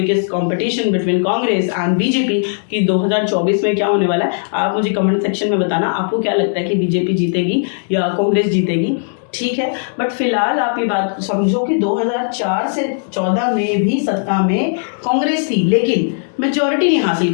competition between Congress and BJP कि 2024 में क्या होने वाला है। आप मुझे कमेंट सेक्शन में बताना आपको क्या लगता है कि बीजेपी जीतेगी या कांग्रेस जीतेगी, ठीक है। बट फिलहाल आप ये बात समझो कि 2004 से 14 में भी सत्ता में कांग्रेस थी, लेकिन मेजॉरिटी नहीं हासिल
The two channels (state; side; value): silent; right; 66 dB below the other